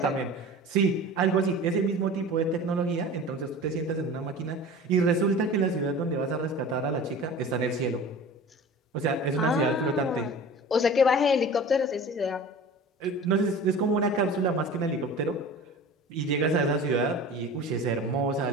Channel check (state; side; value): normal; both; correlation 0.38